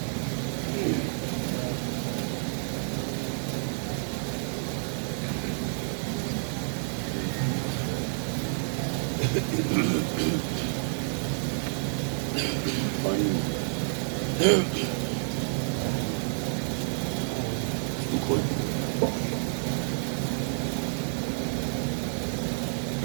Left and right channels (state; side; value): silent; left; 58 dB below the other